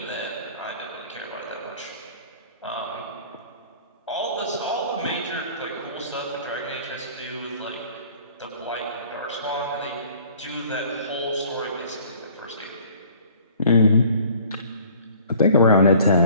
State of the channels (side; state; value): both; inverted; correlation -0.52